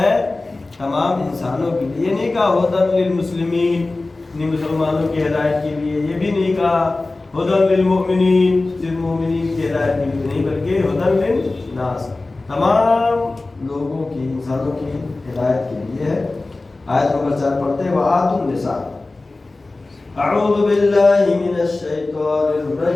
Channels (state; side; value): quieter; right; 3.2 dB